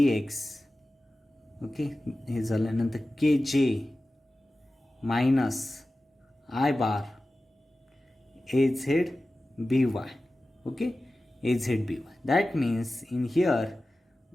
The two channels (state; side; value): normal; both; correlation 0.95